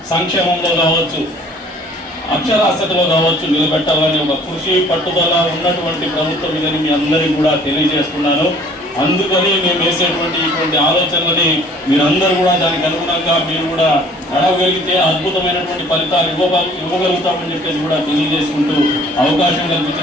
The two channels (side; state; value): both; normal; correlation 0.54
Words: సంక్షేమంలో కావచ్చు, అక్షరాస్యతలో కావచ్చు నిలబెట్టాలని ఒక కృషి పట్టుదల ఉన్నటువంటి ప్రభుత్వం ఇదని మీ అందరికీ కూడా తెలియజేస్తున్నాను. అందుకని మేము వేసేటువంటి ఇటువంటి ఆలోచనలని మీరందరూ కూడా దానికి అనుగుణంగా మీరు కూడా నడవగలిగితే అద్భుతమైనటువంటి ఫలితాలు ఇవ్వగలుగుతామని చెప్పేసి కూడా తెలియజేసుకుంటూ అవకాశం